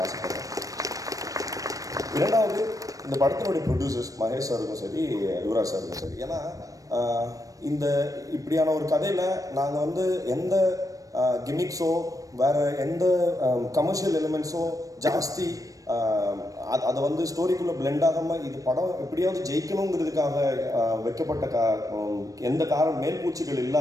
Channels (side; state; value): left; late; 0.16 ms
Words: ஆசைப்படுறேன். இரண்டாவது, இந்த படத்தினுடைய ப்ரொடியூசர்ஸ் மகேஷ் சாருக்கும் சரி, யுவராஜ் சாருக்கும் சரி. ஏன்னா இந்த இப்படியான ஒரு கதையில் நாங்கள் வந்து எந்த கிமிக்ஸோ வேறு எந்த கமர்ஷியல் எலிமெண்ட்ஸோ ஜாஸ்தி அதை வந்து ஸ்டோரிக்குள்ளே பிளெண்ட் ஆகாமல் இது படம் எப்படியாவது ஜெயிக்கணுங்கிறதுக்காக வைக்கப்பட்ட எந்த மேல்பூச்சிகள்